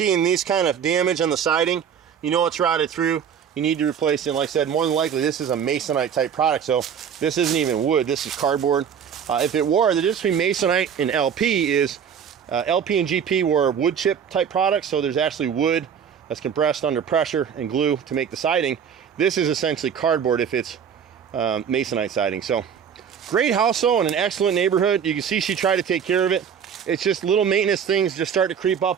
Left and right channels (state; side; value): quieter; left; 7.8 dB